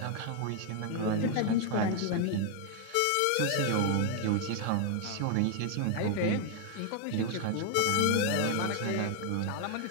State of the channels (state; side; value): different; both; correlation 0.00